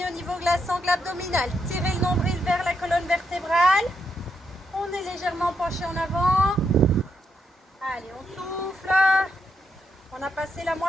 au niveau de la sangle abdominale. Tirez le nombril vers la colonne vertébrale. On est légèrement penché en avant. Allez, on souffle. On a passé la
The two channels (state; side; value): normal; both; correlation 0.80